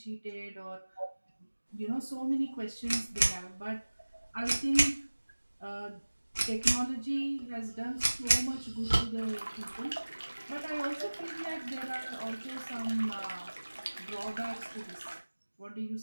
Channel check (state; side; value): inverted; both; correlation -1.00